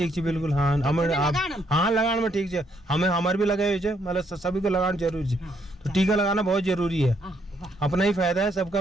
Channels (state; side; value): normal; both; correlation 0.72